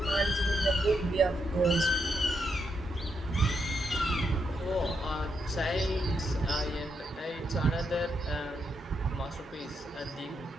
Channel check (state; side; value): normal; both; correlation 0.81